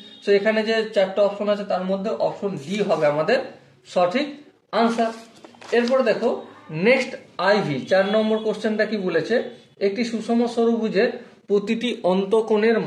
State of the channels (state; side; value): identical; both; correlation 1.00